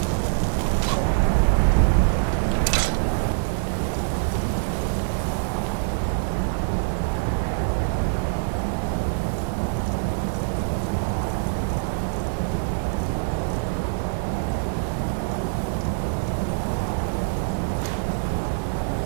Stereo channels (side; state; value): left; silent; 57 dB below the other